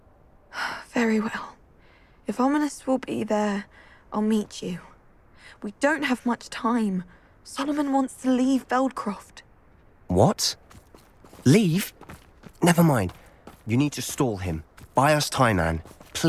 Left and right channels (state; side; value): identical; both; correlation 1.00